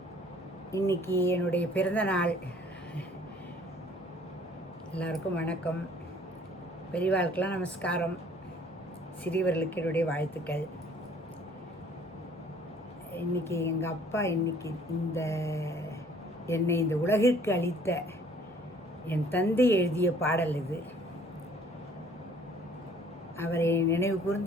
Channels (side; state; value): both; normal; correlation 0.56